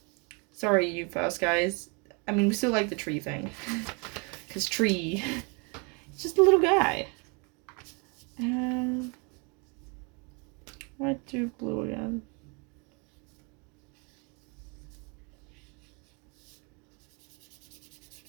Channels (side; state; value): left; quieter; 32.9 dB